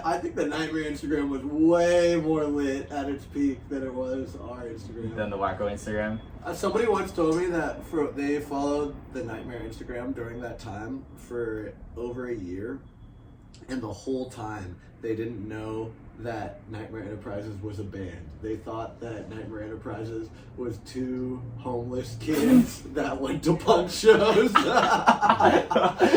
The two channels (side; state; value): both; identical; correlation 1.00